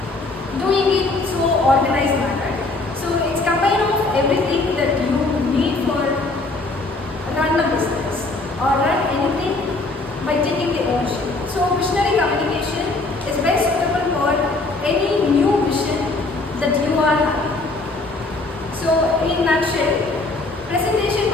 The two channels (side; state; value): right; quieter; 3.2 dB